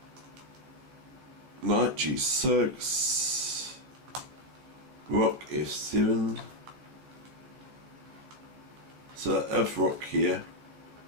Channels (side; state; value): left; late; 15 ms